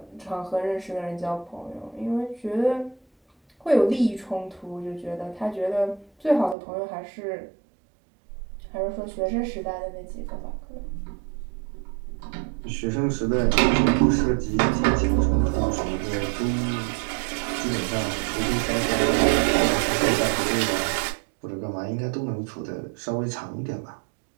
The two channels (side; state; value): left; drops out; at 6.6 s